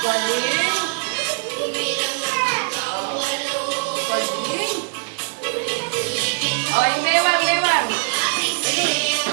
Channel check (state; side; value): silent; left; digital silence